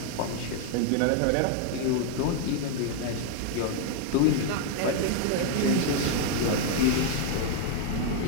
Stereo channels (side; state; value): both; different; correlation 0.00